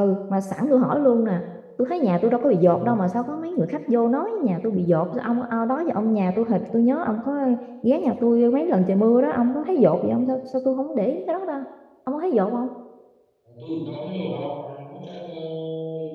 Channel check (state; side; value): identical; both; correlation 1.00